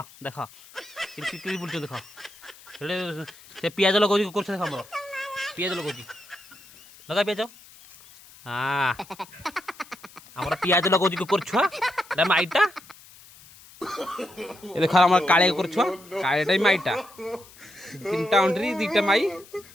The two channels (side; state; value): left; noise; hiss, 22 dB below the sound